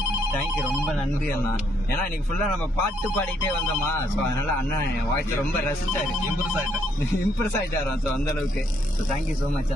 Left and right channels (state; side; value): normal; both; correlation 0.72